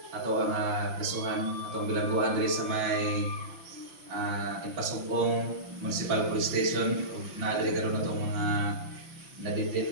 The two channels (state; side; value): late; left; 5.9 ms